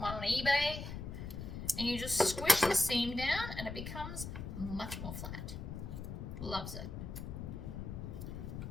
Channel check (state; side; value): noise; left; rumble, 7 dB below the sound